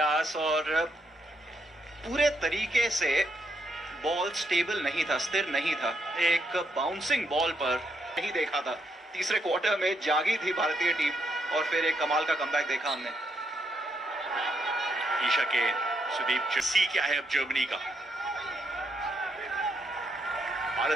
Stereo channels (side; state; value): both; normal; correlation 0.77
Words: और पूरे तरीके से बॉल स्टेबल नहीं था, स्थिर नहीं था। एक बाउंसिंग बॉल पर नहीं देखा था। तीसरे क्वार्टर में जागी थी भारतीय टीम और फिर एक कमाल का कमबैक देखा हमने। ईशा के सुदीप सी क्या है अब जर्मनी का।